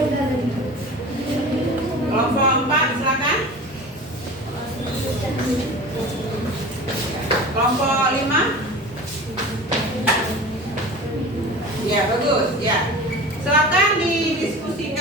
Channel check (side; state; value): both; normal; correlation 0.35